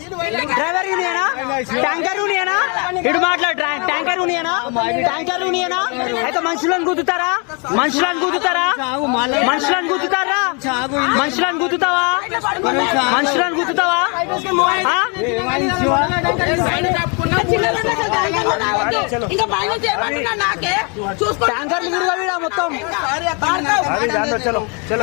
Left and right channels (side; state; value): right; quieter; 34.1 dB